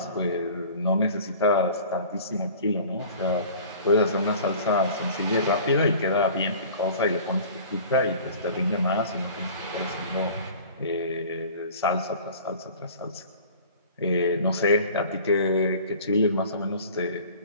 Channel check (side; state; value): both; inverted; correlation -0.44